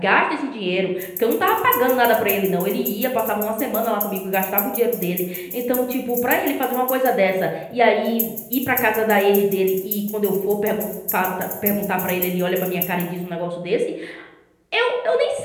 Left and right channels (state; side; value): identical; both; correlation 1.00